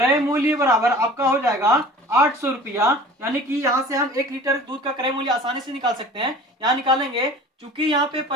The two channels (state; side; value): normal; both; correlation 0.43